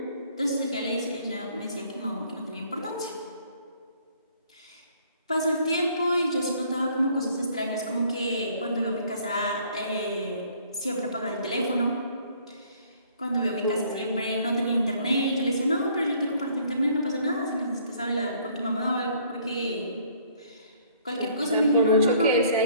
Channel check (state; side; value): inverted; both; correlation -0.60